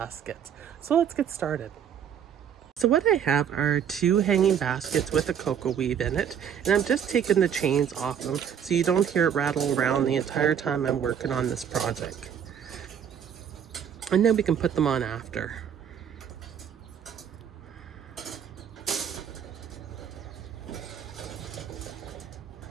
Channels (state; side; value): quieter; left; 8.5 dB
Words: So let's get started. So what I have are two hanging baskets with a cocoa weave in it, and I'm just taking the chains off them so you don't hear it rattle around the entire time I'm working on this project. And then we can put them on after.